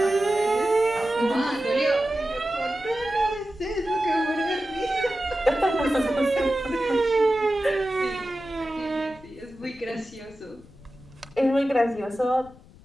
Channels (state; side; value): noise; left; rumble, 22 dB below the sound